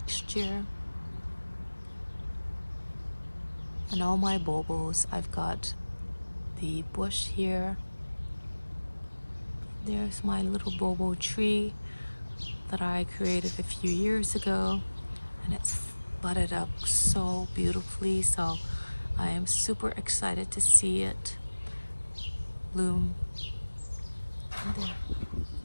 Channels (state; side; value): inverted; both; correlation -1.00